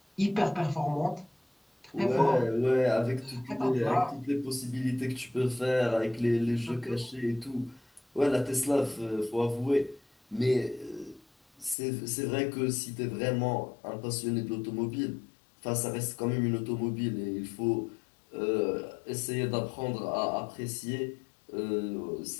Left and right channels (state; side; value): drops out; right; at 11.8 s